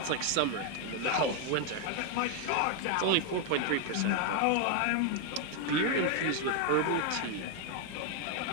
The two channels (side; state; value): both; different; correlation 0.01